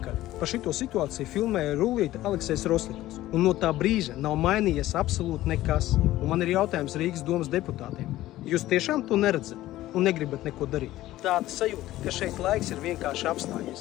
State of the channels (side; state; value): right; quieter; 15.4 dB